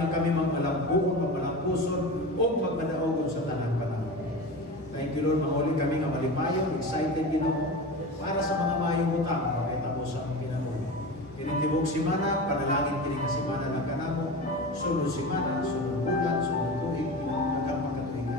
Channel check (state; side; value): normal; both; correlation 0.28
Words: nga kami magmalambuon, magmalampuson, o magmadaogon sa tanang panahon. Thank you, Lord, mahuli kami nga malipayon, excited, Ginoo, para sa mga mayong utang, makita mo sa aming pinabuhi. Kinitibog simana, panalangin kini nga simana ng kanamo, sunod simana, sunod bulan, sunod tuig, hanggang